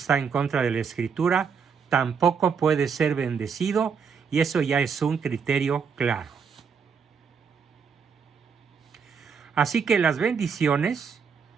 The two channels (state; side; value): quieter; left; 6.2 dB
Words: en contra de la Escritura, tampoco puede ser bendecido, y eso ya es un criterio claro. Así que las bendiciones